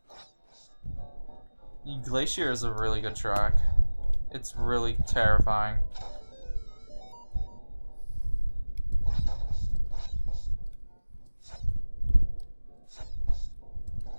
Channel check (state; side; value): inverted; both; correlation -1.00